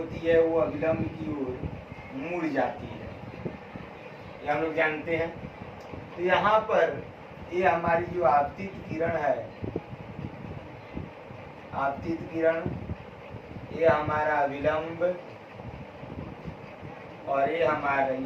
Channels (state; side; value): identical; both; correlation 1.00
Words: है वो अभिलंब की ओर मुड़ जाती है, ये हम लोग जानते हैं। तो यहाँ पर ये हमारी जो आपतित किरण है, आपतित किरण, ये हमारा अभिलंब और ये